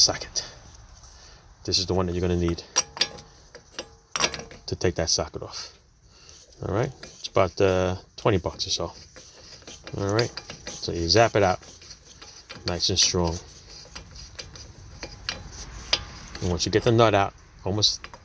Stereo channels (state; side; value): identical; both; correlation 1.00